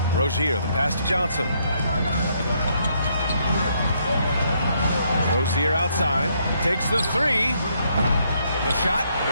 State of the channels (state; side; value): inverted; both; correlation -0.73